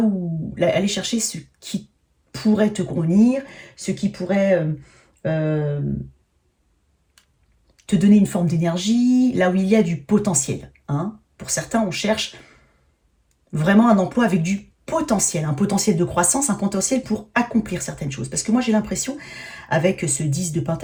chercher ce qui pourrait te convenir, ce qui pourrait te donner une forme d'énergie, là où il y a du potentiel. Hein. Pour certains, on cherche vraiment un emploi avec du potentiel, un potentiel de croissance, un potentiel pour accomplir certaines choses. Parce que moi, j'ai l'impression, avec ce 10 de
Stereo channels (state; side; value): identical; both; correlation 1.00